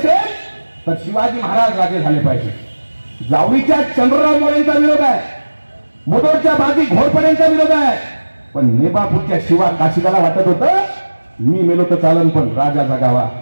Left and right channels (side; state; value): both; inverted; correlation -1.00